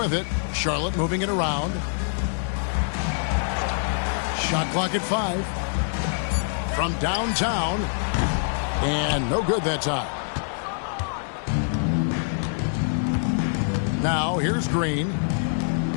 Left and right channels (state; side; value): silent; right; digital silence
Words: it. Charlotte moving it around. Shot clock at 5. From downtown. And no good that time. Now here's Green.